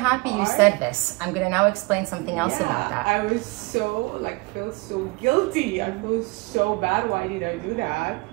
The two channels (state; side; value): quieter; left; 25.7 dB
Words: you said this. I'm gonna now explain something else about that. I was so felt so guilty. I feel so bad. Why did I do that?